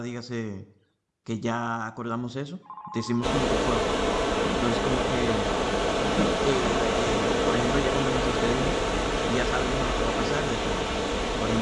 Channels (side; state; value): both; identical; correlation 1.00